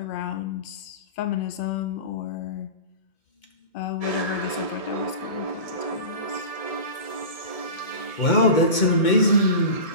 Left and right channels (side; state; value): right; late; 2.2 ms